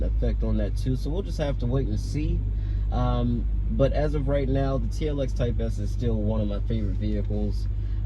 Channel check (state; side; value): identical; both; correlation 1.00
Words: effect on that too. So we'll just have to wait and see. But as of right now, the TLX Type S is still one of my favorite vehicles.